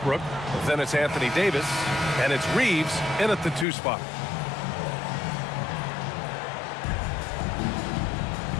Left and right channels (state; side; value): drops out; right; at 3.7 s